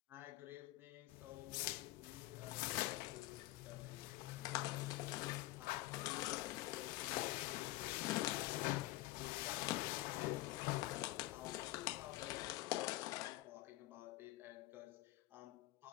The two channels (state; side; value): quieter; right; 18.2 dB